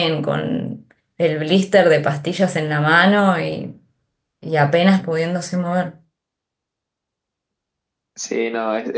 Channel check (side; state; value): both; identical; correlation 1.00